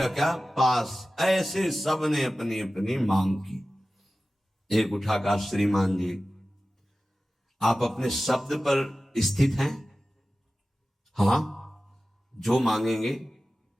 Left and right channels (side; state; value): both; normal; correlation 0.95